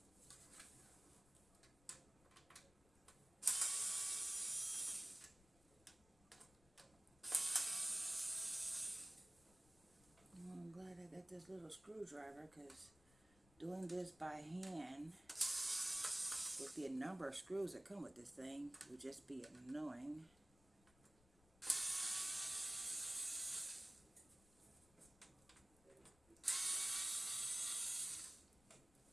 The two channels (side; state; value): left; noise; rumble, 28 dB below the sound